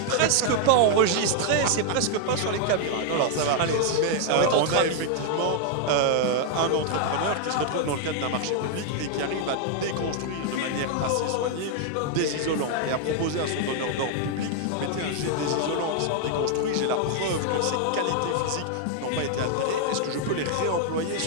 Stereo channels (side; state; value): both; different; correlation 0.00